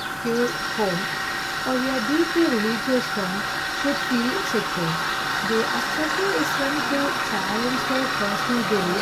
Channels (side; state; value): both; identical; correlation 1.00